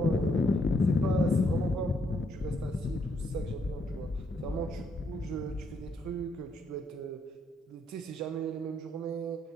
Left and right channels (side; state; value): both; normal; correlation 0.73